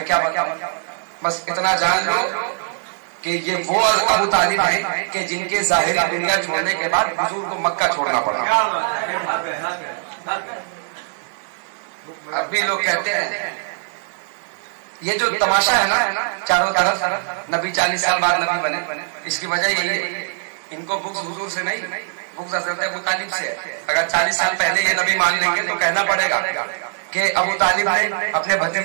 کیا بتاؤں، بس اتنا جان لو کہ یہ وہ ابو طالب ہیں کہ جن کے ظاہری دنیا چھوڑنے کے بعد حضور کو مکہ چھوڑنا پڑا. اب بھی لوگ کہتے ہیں یہ جو تماشا ہے نا چاروں طرف، نبی 40 سال بعد نبی بنے، اس کی وجہ یہی ہے ان کو بغض حضور سے نہیں، بغض حضرت ابو طالب سے ہے. اگر 40 سال پہلے یہ نبی مان لیں گے تو کہنا پڑے گا کہ ابو طالب نے اپنے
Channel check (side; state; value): left; silent; digital silence